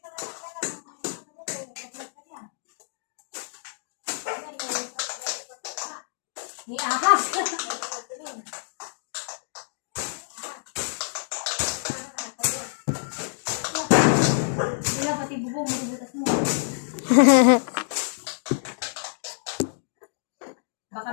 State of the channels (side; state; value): right; silent; digital silence